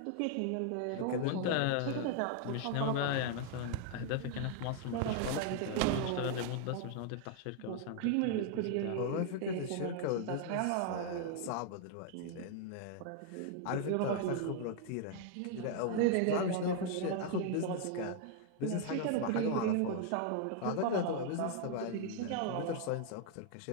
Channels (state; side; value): different; both; correlation 0.00